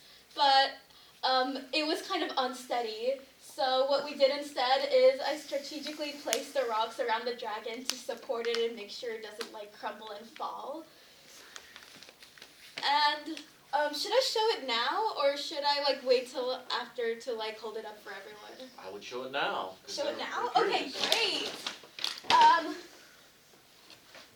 but it was kind of unsteady. So what we did instead is I strategically placed the rocks around the dragon to support it and make sure it doesn't like crumble and fall. And should I show it now or should I like wait till after to like hold it up for everyone? I would show it now. Show it now? I'm Okay, curious. great.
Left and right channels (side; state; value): both; identical; correlation 1.00